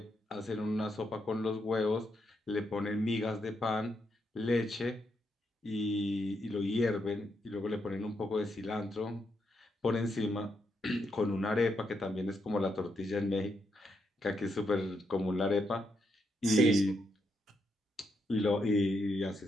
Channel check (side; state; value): both; normal; correlation 0.80